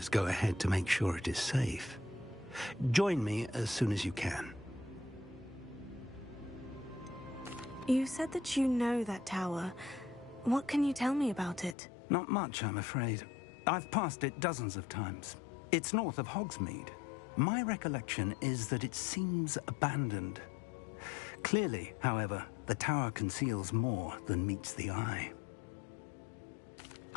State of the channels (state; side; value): drops out; right; at 11.8 s